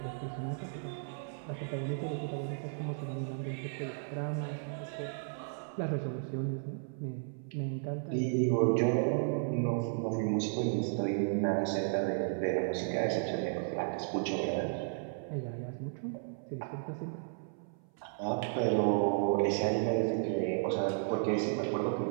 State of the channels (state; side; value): silent; left; 55 dB below the other